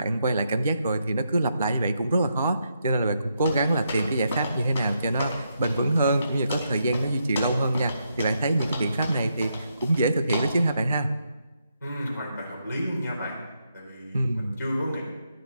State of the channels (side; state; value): both; inverted; correlation -0.80